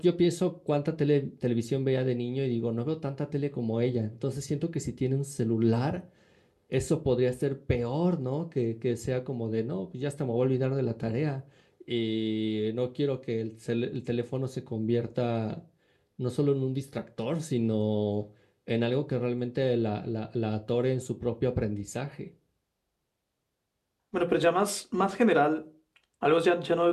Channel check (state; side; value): identical; both; correlation 1.00